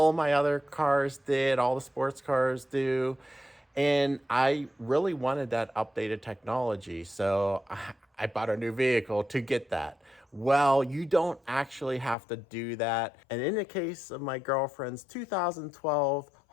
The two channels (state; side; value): drops out; right; at 12.2 s